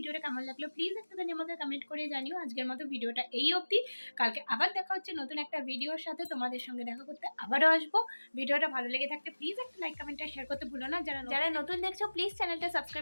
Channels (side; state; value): both; inverted; correlation -1.00